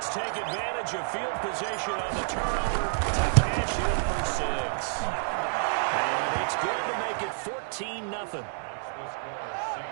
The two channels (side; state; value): left; silent; digital silence